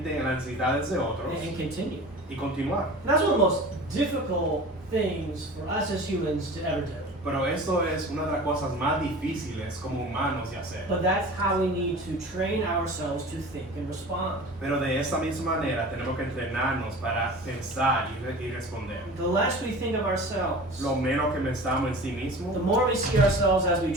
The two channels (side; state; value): both; normal; correlation 0.38